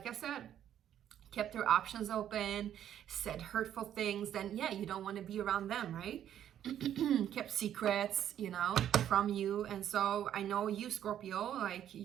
I said, kept their options open, said hurtful things, then yeah, you don't want to be around them, right? Kept secrets, you know, from you. And so I know you, Scorpio, like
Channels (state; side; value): quieter; left; 10.5 dB